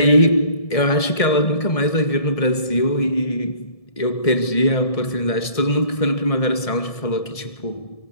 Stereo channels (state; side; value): late; right; 1.7 ms